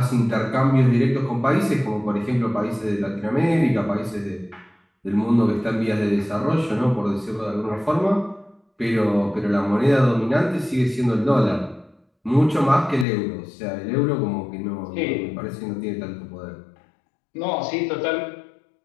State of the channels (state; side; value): drops out; right; at 13.1 s